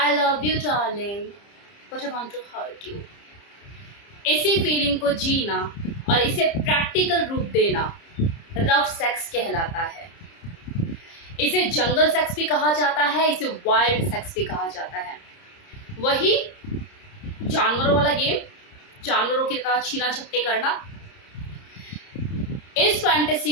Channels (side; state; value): right; late; 30 ms